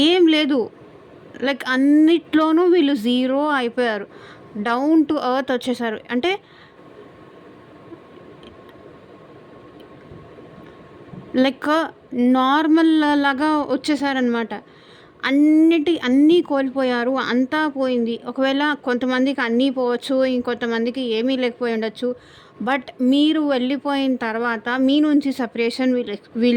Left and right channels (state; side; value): identical; both; correlation 1.00